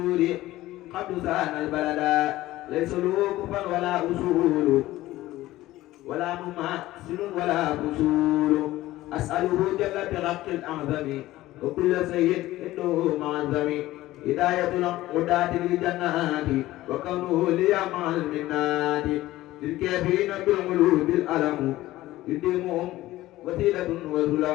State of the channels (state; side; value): quieter; right; 16.4 dB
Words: قد سان البلدا ليس له كفا ولا أصول ولا مماثل ولا فصول أسأله جل برق الأعظم وكل سيد إنه معظم هداية الهداة للجنات وكونه لي مع المنات للكافرين بالقلوب الألم يديمهم وسيلة